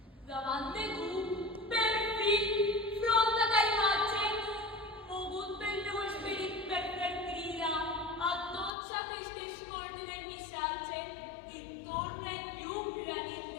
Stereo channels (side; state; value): right; drops out; at 8.7 s